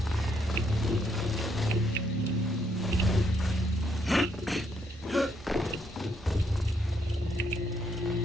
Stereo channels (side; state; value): both; normal; correlation 0.73